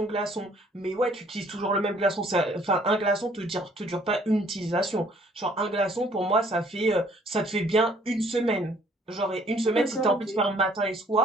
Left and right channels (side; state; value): both; normal; correlation 0.60